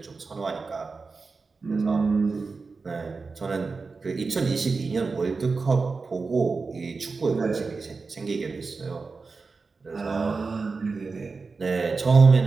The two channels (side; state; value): left; quieter; 4.4 dB